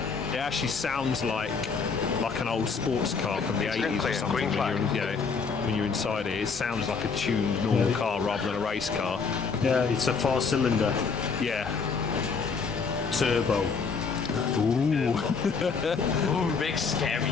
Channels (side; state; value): right; quieter; 5.2 dB